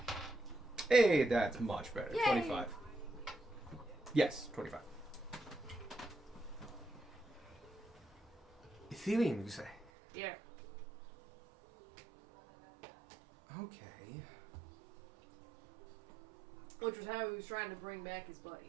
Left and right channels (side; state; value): left; drops out; at 9.9 s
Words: Hey, that's much better. Yay. 25. Yes, 25. Ethereum, you say? Yeah. Okay. Which was how he was trying to bring back his